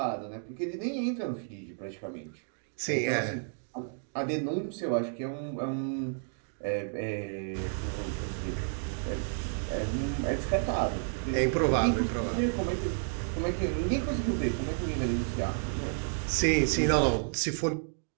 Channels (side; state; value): left; silent; digital silence